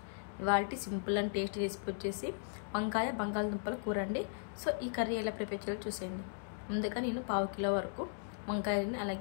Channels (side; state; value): right; silent; digital silence